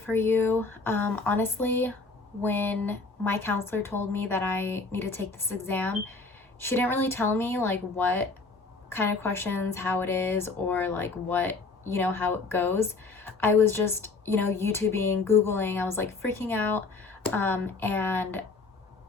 you. Honestly, when my counselor told me that I need to take this exam, she didn't really tell me like what kind of questions, how it is, or like what, how it goes. I was just, YouTubing, Googling, I was like freaking out. And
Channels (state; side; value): quieter; right; 3.9 dB